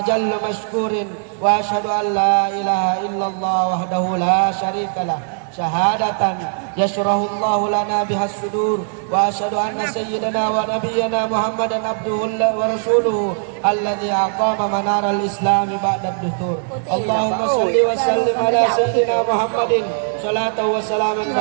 مشكور وأشهد أن لا إله إلا الله وحده لا شريك له شهادة يشرح الله لنا بها الصدور وأشهد أن سيدنا ونبينا محمدا عبده ورسوله الذي أقام منار الإسلام بعد الدثور اللهم صل وسلم على سيدنا محمد صلاة وسلاما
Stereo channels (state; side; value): silent; left; digital silence